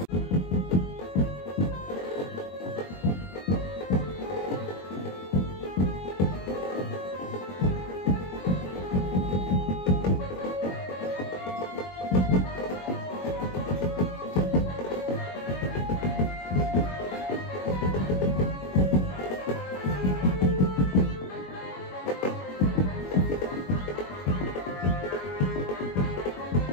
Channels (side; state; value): right; late; 21 ms